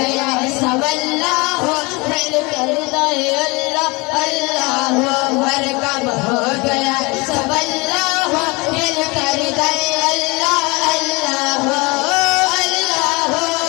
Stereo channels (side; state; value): right; quieter; 26.0 dB